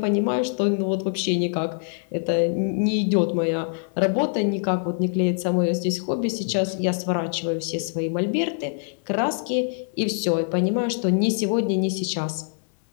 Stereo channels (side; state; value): right; silent; 62 dB below the other